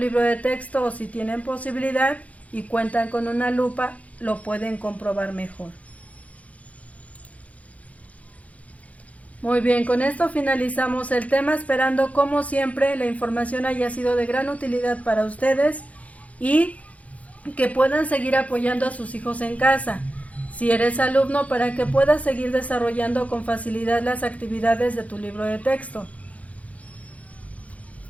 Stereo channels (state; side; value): late; right; 0.068 ms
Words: de texto, o si tienen posibilidad y cuentan con una lupa, lo pueden comprobar mejor. Muy bien, con esto finalizamos el tema, esperando como siempre la información haya sido de gran utilidad para ustedes y que puedan seguir apoyando a sus hijos en casa. Si eres alumno, para que puedas seguir desarrollando con facilidad las actividades de tu libro de texto.